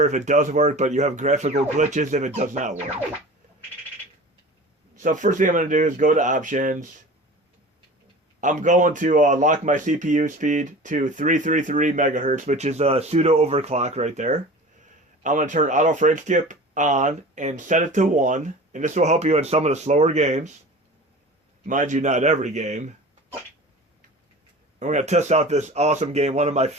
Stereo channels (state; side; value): normal; both; correlation 0.38